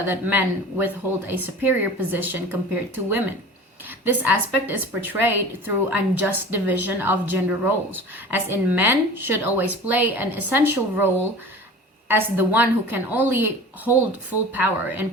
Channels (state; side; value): normal; both; correlation 0.38